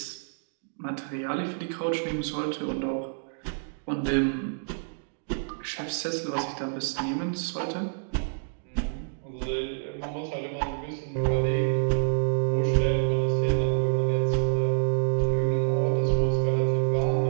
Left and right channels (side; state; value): left; silent; digital silence